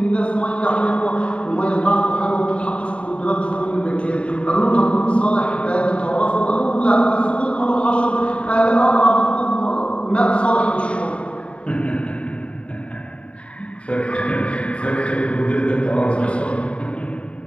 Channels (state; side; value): late; right; 0.061 ms